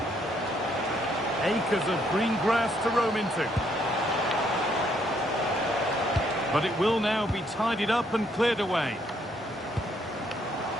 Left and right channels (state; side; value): normal; both; correlation 0.70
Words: Acres of green grass to roam into. But it will now be tidied up and cleared away.